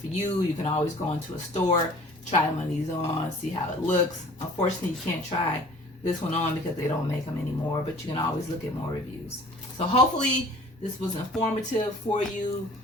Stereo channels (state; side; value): normal; both; correlation 0.48